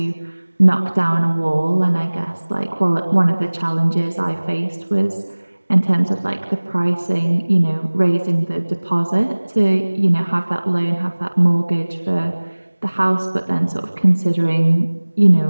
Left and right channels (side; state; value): both; inverted; correlation -1.00